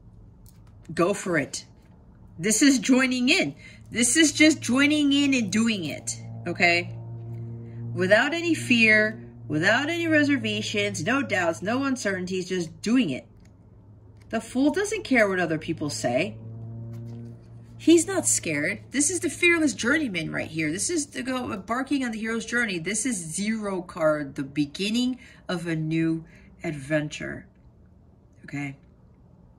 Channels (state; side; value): identical; both; correlation 1.00